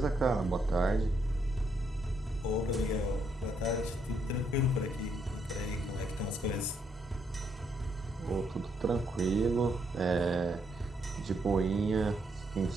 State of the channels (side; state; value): both; normal; correlation 0.75